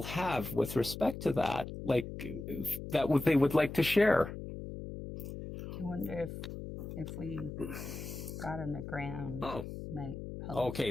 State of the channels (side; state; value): left; noise; hum, 8 dB below the sound